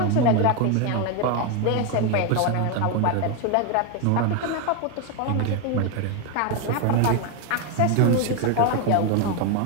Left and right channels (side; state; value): both; different; correlation 0.02